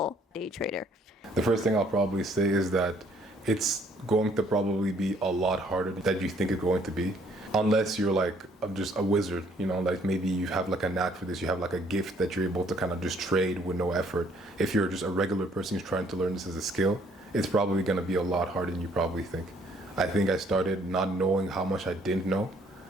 day trader? The first thing I'll probably say is that it's going to probably be a lot harder than you think it's going to be. Unless you're like just a wizard, like maybe you have like a knack for this, you have like a gift that you're able to kind of just trade with no effort. If you're just a regular person who's trying to learn this as a skill, it's probably going to be a lot harder than you probably think. I think I started not knowing how much I didn't know.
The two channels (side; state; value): both; normal; correlation 0.64